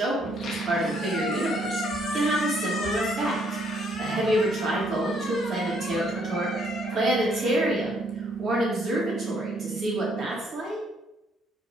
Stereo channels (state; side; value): normal; both; correlation 0.68